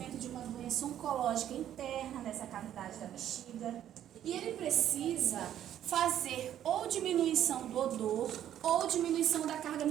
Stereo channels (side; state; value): left; quieter; 11.0 dB